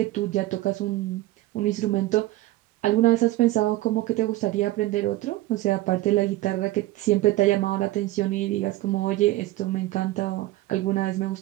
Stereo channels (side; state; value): left; quieter; 16.9 dB